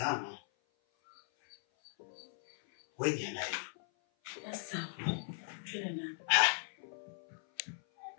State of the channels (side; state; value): right; silent; 52 dB below the other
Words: Wewe ni nani? Sasa, twende ndani.